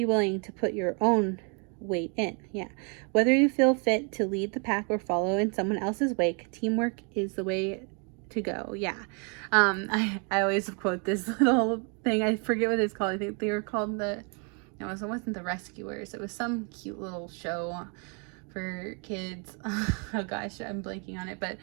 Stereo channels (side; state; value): left; quieter; 36.9 dB